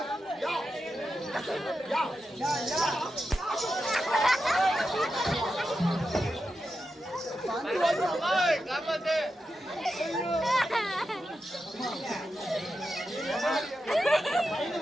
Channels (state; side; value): normal; both; correlation 0.89